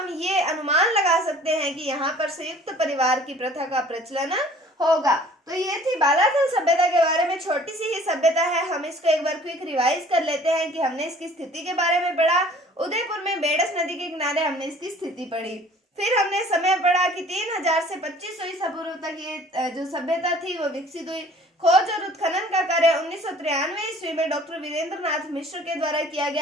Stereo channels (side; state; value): both; normal; correlation 0.51